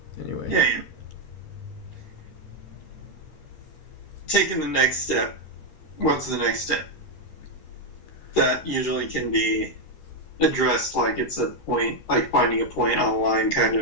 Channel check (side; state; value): right; late; 13 ms